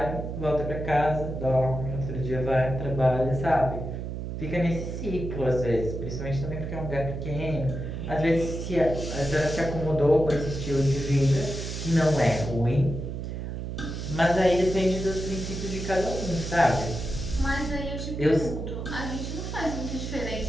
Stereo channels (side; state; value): right; noise; hum, 5 dB below the sound